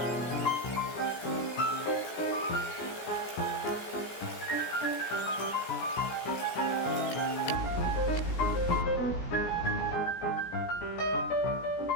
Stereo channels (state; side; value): late; right; 17 ms